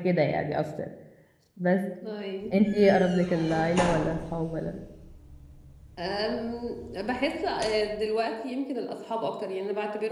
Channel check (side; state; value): both; identical; correlation 1.00